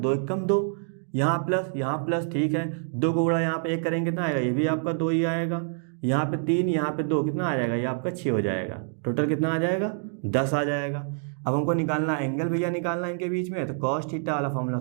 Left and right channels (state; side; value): silent; left; 60 dB below the other